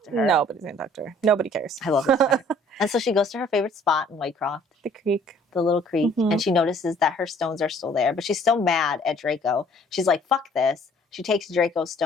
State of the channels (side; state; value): both; normal; correlation 0.57